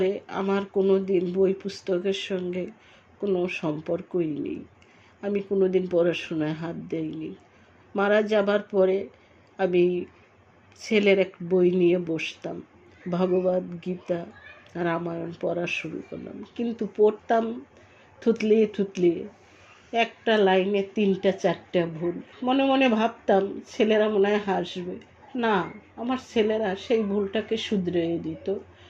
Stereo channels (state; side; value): identical; both; correlation 1.00